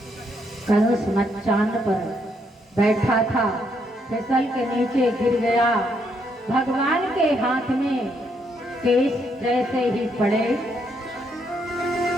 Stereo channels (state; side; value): normal; both; correlation 0.75